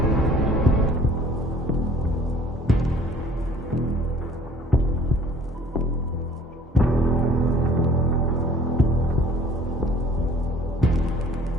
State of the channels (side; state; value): both; normal; correlation 0.52